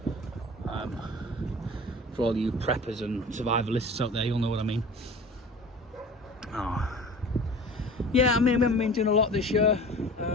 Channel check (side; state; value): both; normal; correlation 0.41